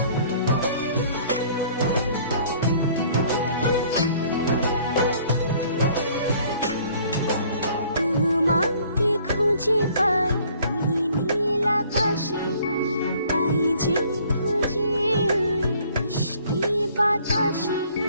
তোমাকে খুঁজে পাই ওই নীল আকাশে, তাই যে খুঁজে ওই মিষ্টি বাতাসে।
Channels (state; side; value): inverted; both; correlation -0.57